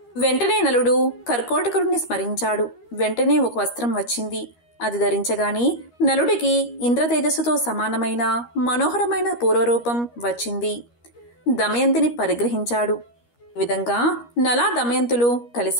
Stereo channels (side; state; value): right; late; 13 ms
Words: వెంటనే నలుడు కర్కోటకుడిని స్మరించాడు. వెంటనే ఒక వస్త్రం వచ్చింది. అది ధరించగాని నలుడికి ఇంద్రతేజస్సుతో సమానమైన మనోహరమైన పూర్వరూపం వచ్చింది. దమయంతిని పరిగ్రహించాడు. ఈ విధంగా నలా దమయంతులు